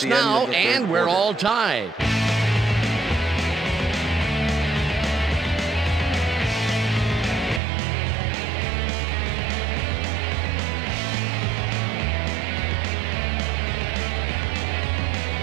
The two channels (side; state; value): left; drops out; at 7.6 s